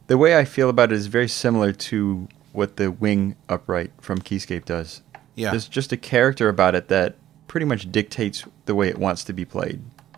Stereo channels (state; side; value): quieter; left; 12.5 dB